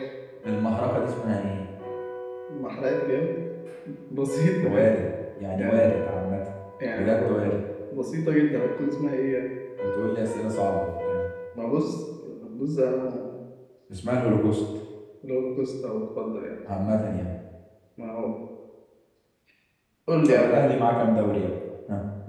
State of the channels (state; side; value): identical; both; correlation 1.00